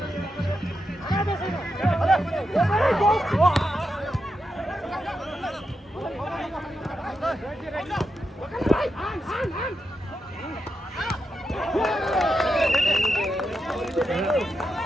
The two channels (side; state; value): both; normal; correlation 0.86